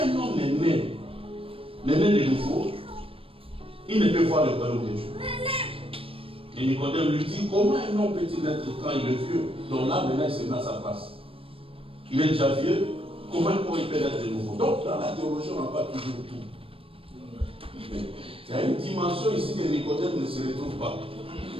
homme est né de nouveau, il ne peut voir le royaume de Dieu. Et Nicodème lui dit, comment un homme peut-il naître quand il est vieux, dont là maintenant il se met à sa place? Il est déjà vieux, comment il peut naître de nouveau. Donc, dans la théologie, on n'a pas toujours tout. Il y a une dimension ici que Nicodème ne se retrouve pas.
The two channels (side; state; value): left; late; 0.27 ms